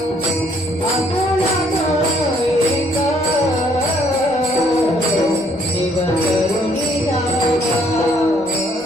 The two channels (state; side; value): noise; left; rumble, 28 dB below the sound